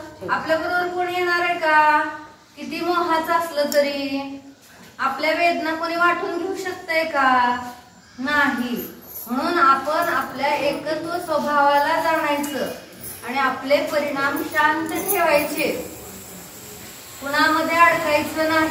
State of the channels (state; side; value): identical; both; correlation 1.00